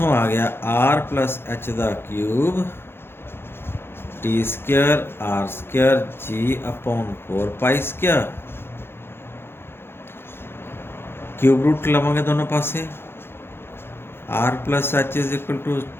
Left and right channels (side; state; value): right; late; 0.11 ms